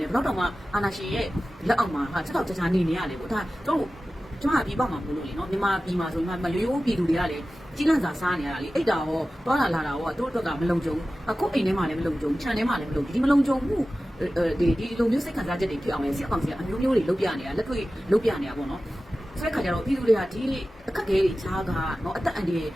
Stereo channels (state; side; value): normal; both; correlation 0.95